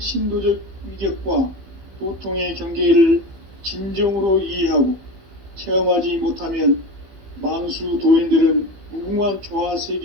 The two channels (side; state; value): left; late; 15 ms